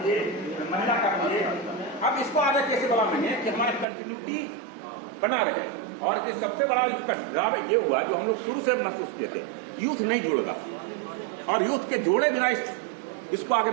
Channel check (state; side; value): drops out; left; at 3.9 s